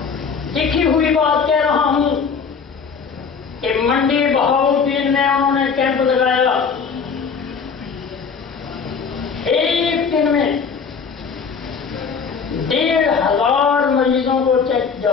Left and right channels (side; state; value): right; quieter; 5.8 dB